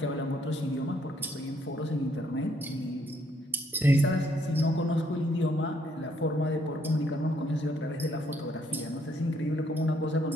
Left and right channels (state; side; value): normal; both; correlation 0.70